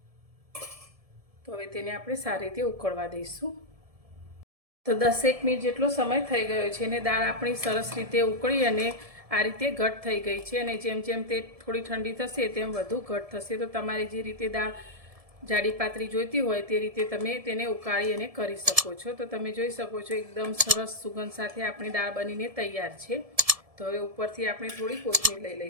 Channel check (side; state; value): left; late; 1.7 ms